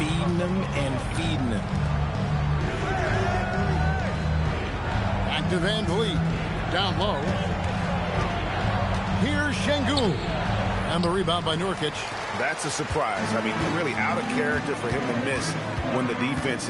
them and feeding them. Back to VanVleet. Down low. Here's Şengün. And the rebound by Nurkic. That's a surprise. I mean, really out of character for him to miss when the defense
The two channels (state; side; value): identical; both; correlation 1.00